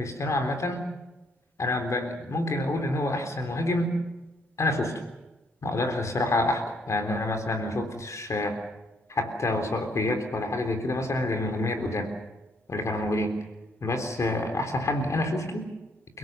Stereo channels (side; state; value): both; normal; correlation 0.68